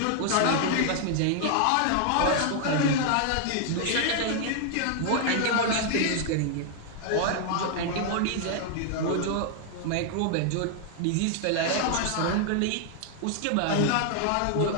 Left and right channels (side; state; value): both; different; correlation 0.00